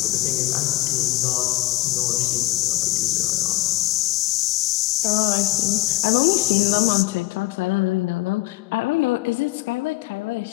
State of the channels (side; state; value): right; quieter; 18.5 dB